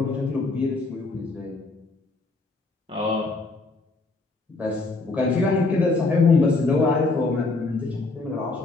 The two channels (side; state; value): right; quieter; 3.5 dB